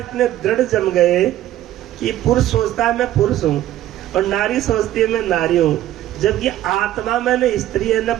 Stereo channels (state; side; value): quieter; left; 13.5 dB